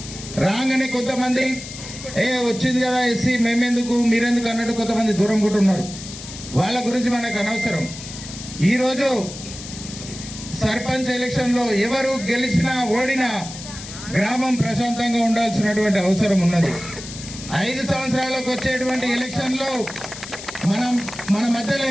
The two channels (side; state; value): left; noise; hiss, 12 dB below the sound